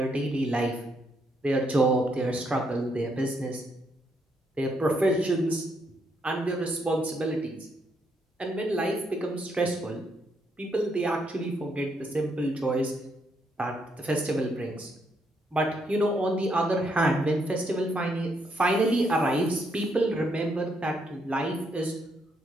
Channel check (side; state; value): both; normal; correlation 0.75